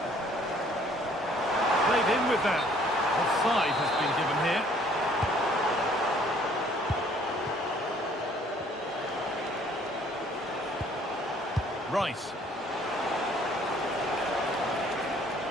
Played in with that. Offside has been given here. Rice.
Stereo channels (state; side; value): normal; both; correlation 0.59